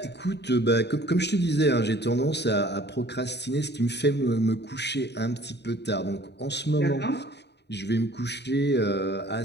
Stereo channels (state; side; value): late; right; 0.50 ms